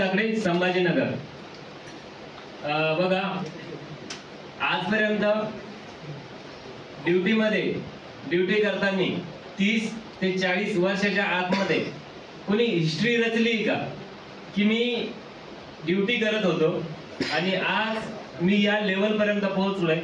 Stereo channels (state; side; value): identical; both; correlation 1.00